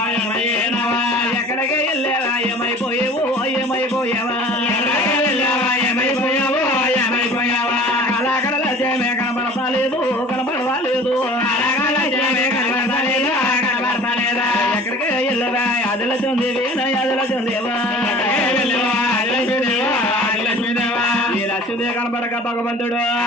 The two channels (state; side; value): normal; both; correlation 0.45